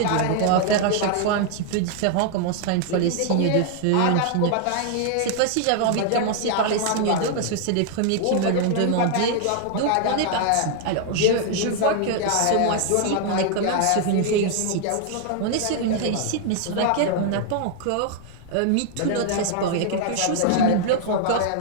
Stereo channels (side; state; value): both; different; correlation 0.00